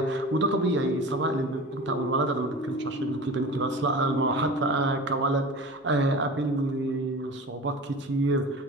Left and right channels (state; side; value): normal; both; correlation 0.35